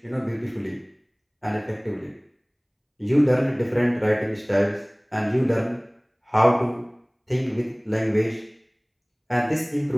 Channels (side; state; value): both; identical; correlation 1.00